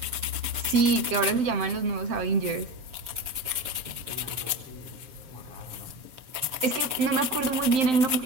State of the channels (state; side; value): late; left; 7.0 ms